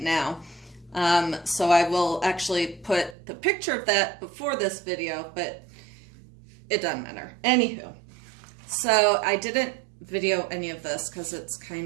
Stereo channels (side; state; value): left; drops out; at 3.2 s